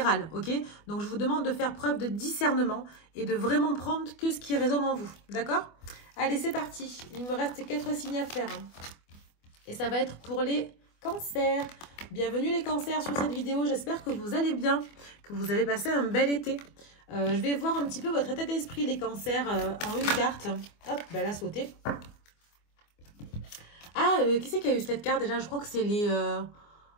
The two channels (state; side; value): late; right; 24 ms